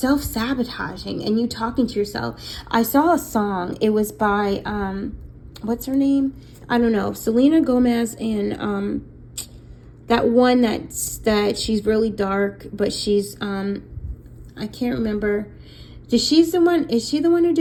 and you talking to yourself. I saw a song, it was by what's her name, I don't know, Selena Gomez, and that one that she's really dark, but she's I can't remember. Is she the one who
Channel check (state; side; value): identical; both; correlation 1.00